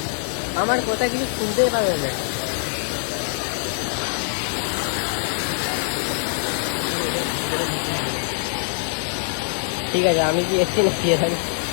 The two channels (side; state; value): right; silent; digital silence